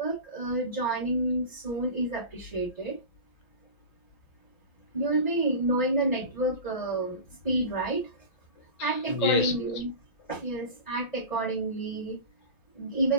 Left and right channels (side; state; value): right; late; 5.5 ms